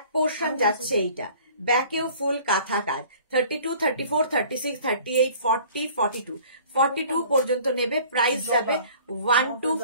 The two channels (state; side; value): inverted; both; correlation -0.50